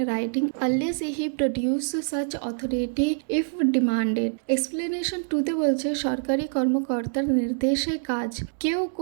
writing unless he produce such authority if demanded। Explanation 2 বলছে সরকারি কর্মকর্তার নির্দেশে কাজ, কেউ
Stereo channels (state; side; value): silent; left; digital silence